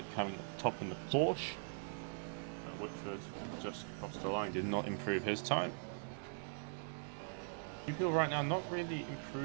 coming top in the Porsche. Whitford just crossed the line, did not improve his time. People right now not really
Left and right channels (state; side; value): silent; left; digital silence